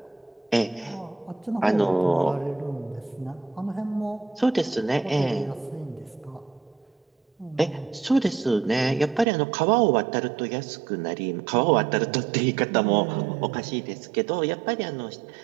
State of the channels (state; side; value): drops out; left; at 9.2 s